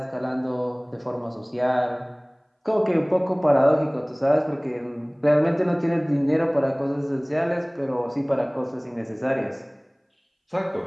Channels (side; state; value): both; identical; correlation 1.00